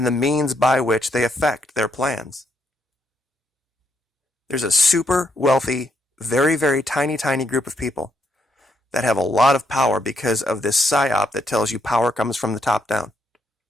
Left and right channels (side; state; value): both; normal; correlation 0.77